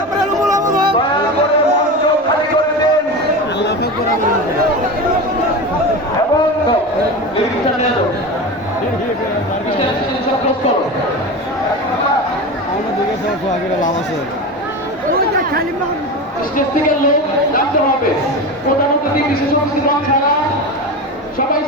মঞ্চ খালি করে দেন স্টেজ থেকে লোক নামতে হবে। প্রধানমন্ত্রী বিশেষ অতিথি ছাড়া সবাই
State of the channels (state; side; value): normal; both; correlation 0.25